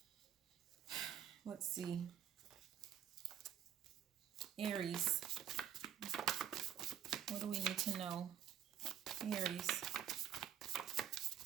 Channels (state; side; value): quieter; left; 10.0 dB